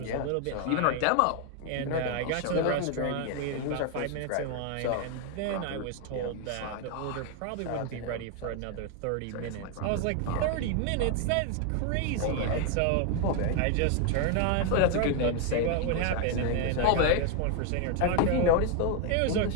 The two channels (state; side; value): different; both; correlation 0.01